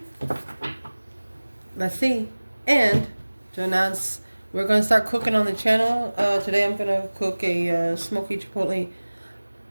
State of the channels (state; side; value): inverted; both; correlation -1.00